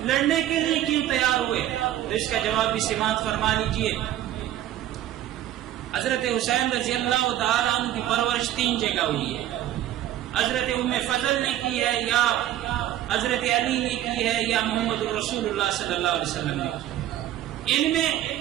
لڑنے کے لیے کیوں تیار ہوئے؟ تو اس کا جواب بھی سماعت فرما لیجئے. حضرت حسین رضی اللہ تعالیٰ عنہ کی پرورش 3 جگہ ہوئی ہے. حضرت ام فضل نے کی ہے، یا حضرت علی نے کی ہے، یا محمد رسول اللہ صلی اللہ علیہ وسلم نے کی. ان میں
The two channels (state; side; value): quieter; left; 12.8 dB